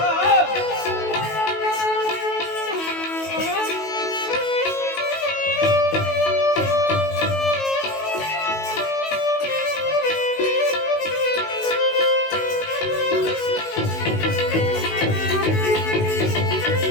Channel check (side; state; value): right; late; 19 ms